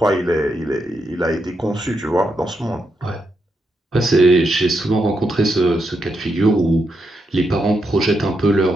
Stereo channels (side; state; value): both; normal; correlation 0.83